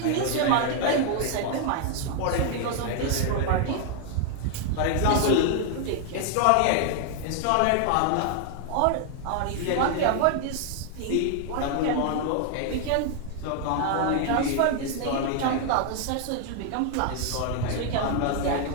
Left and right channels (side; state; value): both; different; correlation 0.00